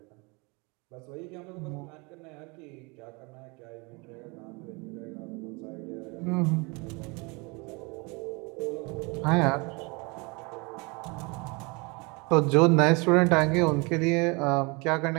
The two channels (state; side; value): quieter; left; 28.6 dB